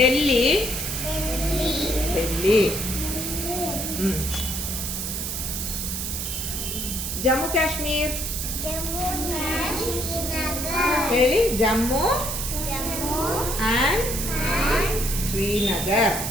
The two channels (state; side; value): noise; right; hiss, 3 dB below the sound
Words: ಜಮ್ಮು ಕಾಶ್ಮೀರ್ ಹೇಳಿ ಜಮ್ಮು ಆ್ಯಂಡ್ ಶ್ರೀನಗರ್